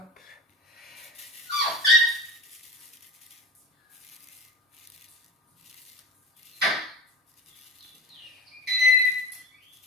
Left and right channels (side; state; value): both; normal; correlation 0.32